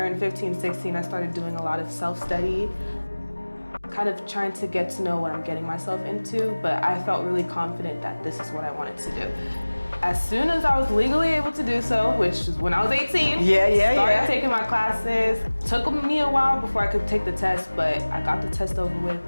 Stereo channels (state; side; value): inverted; both; correlation -1.00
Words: 15, 16, I started doing a lot of self-study, kind of trying to get to know what I'm getting myself into, but I felt really confident that this is what I wanted to do. As soon as I was legally able to do so, which was when I was 18, started taking my classes. Took me a while before I could take the test, but I got the test over with